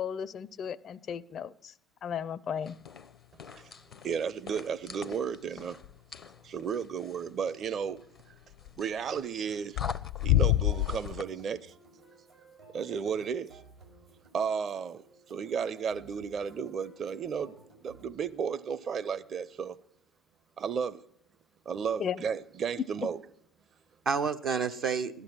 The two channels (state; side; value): normal; both; correlation 0.46